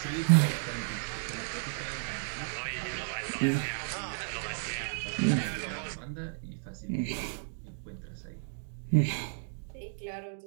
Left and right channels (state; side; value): silent; left; digital silence